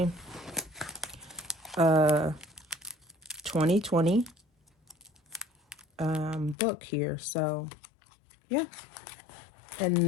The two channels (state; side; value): drops out; right; at 6.6 s